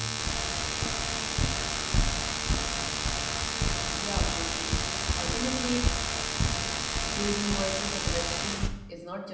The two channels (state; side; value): identical; both; correlation 1.00